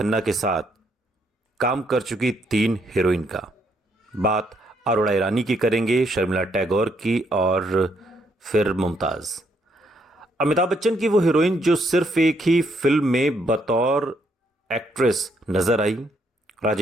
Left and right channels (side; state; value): both; normal; correlation 0.73